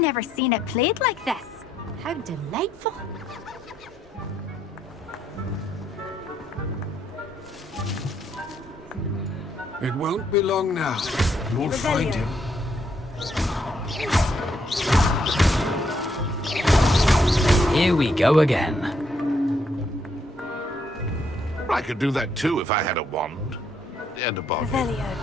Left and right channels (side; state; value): both; normal; correlation 0.74